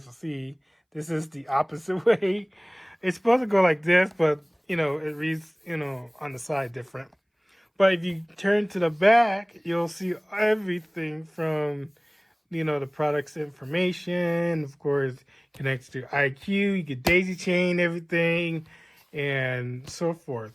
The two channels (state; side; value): identical; both; correlation 1.00